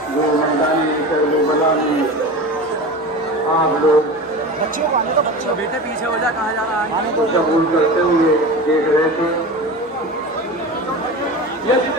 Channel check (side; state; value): both; normal; correlation 0.30